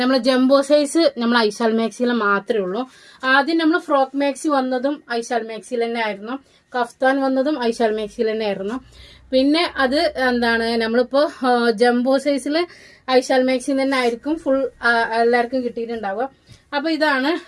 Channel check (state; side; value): identical; both; correlation 1.00